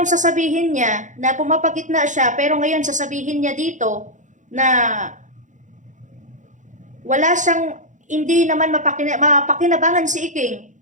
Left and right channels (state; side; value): late; left; 0.36 ms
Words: sasabihin niya, na pumapagitna siya, pero ngayon sasabihin niya dito, na wala siyang, hindi naman mapakinabangan si Iking.